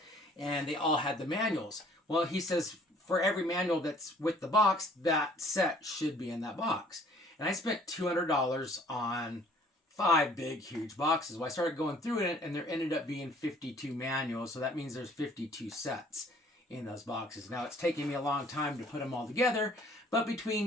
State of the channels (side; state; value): both; normal; correlation 0.56